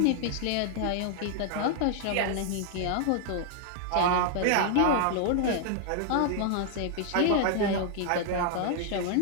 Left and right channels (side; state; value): both; different; correlation 0.00